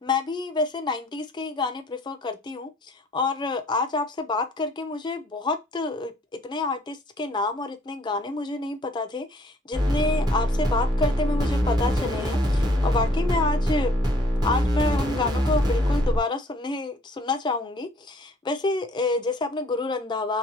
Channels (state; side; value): normal; both; correlation 0.59